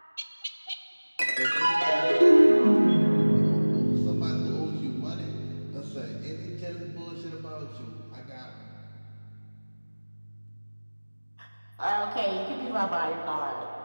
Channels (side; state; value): both; inverted; correlation -1.00